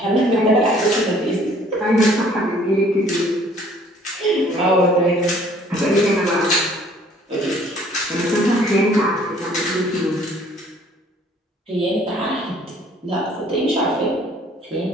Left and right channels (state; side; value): normal; both; correlation 0.57